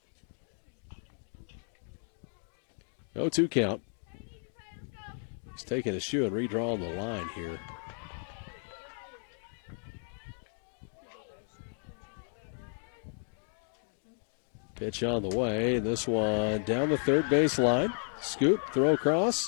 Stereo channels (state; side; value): silent; right; 55 dB below the other